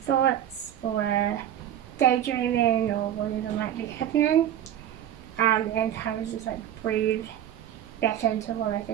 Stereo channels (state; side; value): quieter; left; 10.8 dB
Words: thoughts or daydreaming or whatever might be happening, and kind of just like breathe back into what I